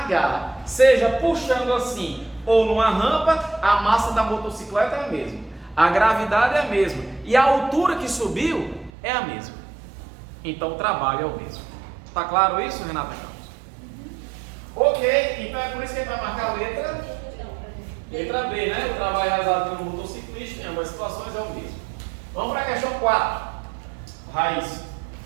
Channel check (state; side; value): drops out; left; at 8.9 s